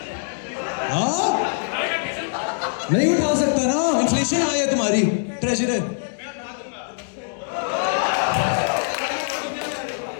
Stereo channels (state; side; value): silent; right; digital silence